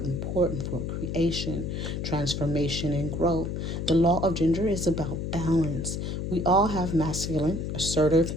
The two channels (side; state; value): left; noise; hum, 3 dB below the sound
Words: for creation, transformation, and growth. The law of gender is about balance. We all have masculine, assertive,